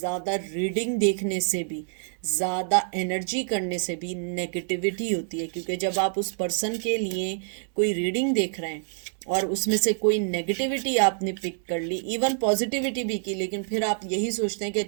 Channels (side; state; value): left; silent; digital silence